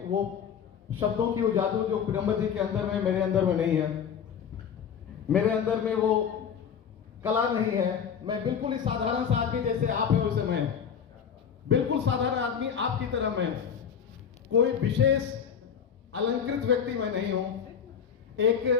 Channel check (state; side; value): quieter; right; 7.6 dB